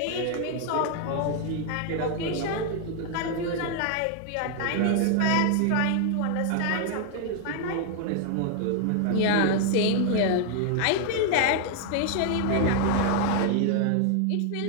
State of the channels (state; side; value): different; both; correlation 0.00